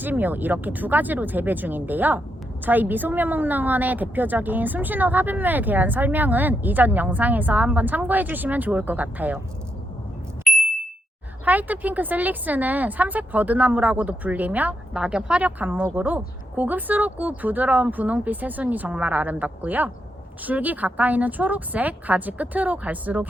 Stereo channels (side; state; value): both; normal; correlation 0.82